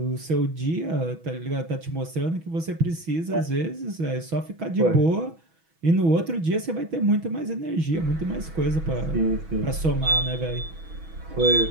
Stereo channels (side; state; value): left; late; 6.1 ms